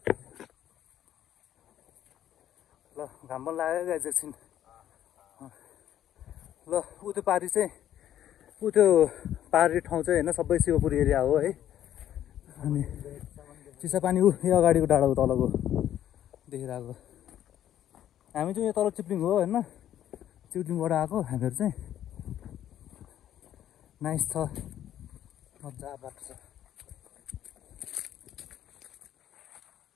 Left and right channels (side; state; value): right; quieter; 11.3 dB